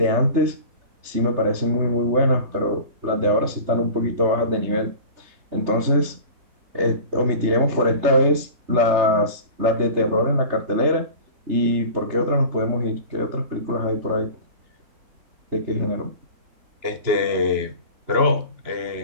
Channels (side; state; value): left; late; 3.3 ms